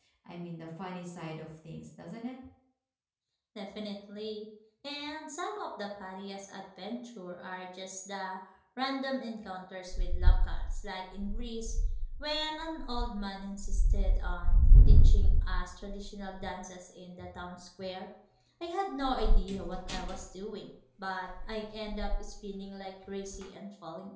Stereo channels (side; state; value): both; identical; correlation 1.00